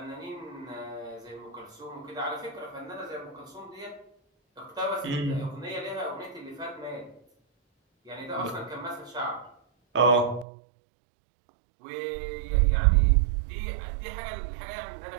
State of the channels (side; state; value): left; drops out; at 10.5 s